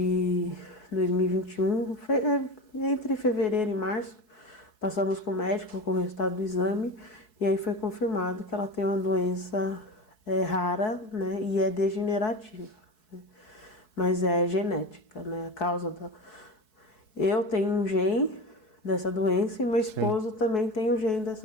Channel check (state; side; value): late; right; 4.7 ms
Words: 2021, entre fevereiro e março, passamos com o médico com o resultado do exame e aí foi confirmado que ela tem uma doença rara, né, e é degenerativa, né, mas é genética, né, a causa da... Eu tenho um gene dessa doença e meu esposo também tem um gene